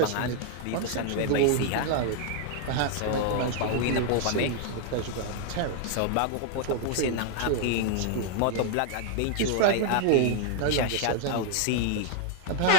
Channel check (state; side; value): different; both; correlation 0.00